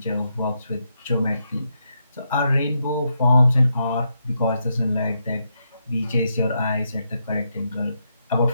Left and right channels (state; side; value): inverted; both; correlation -0.82